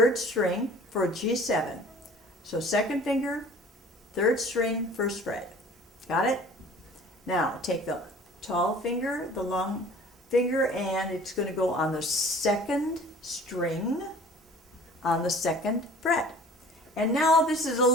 string for G7. So 2nd finger, 3rd string, 1st fret. Got it? Now, take the tall finger, the long finger, and it's going to go on the 2nd string on the 2nd fret. And now this is a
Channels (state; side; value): normal; both; correlation 0.47